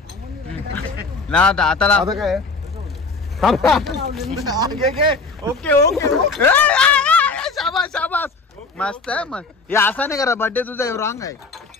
ना आता लाव काय ओके शाबास मस्त आहे मग. हे असा नाही करा बर्थडे तुझा रॉंग आहे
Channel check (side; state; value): right; quieter; 3.9 dB